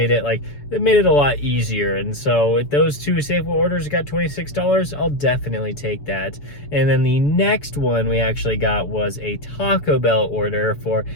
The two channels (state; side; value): late; right; 6.9 ms